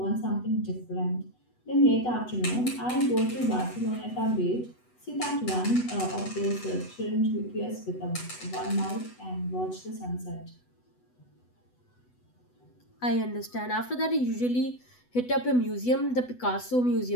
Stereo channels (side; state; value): right; late; 8.1 ms